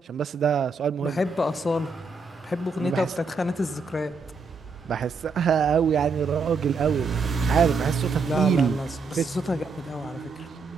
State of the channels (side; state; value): left; quieter; 4.3 dB